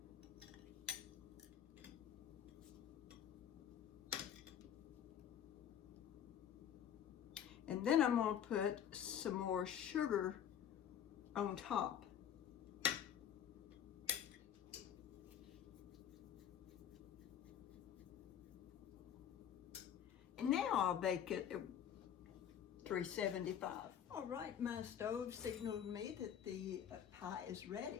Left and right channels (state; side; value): quieter; right; 9.3 dB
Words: And then I'm gonna put some more sugar on top. And now I'll bake it at 375. All right, my stove signaled me that the pie is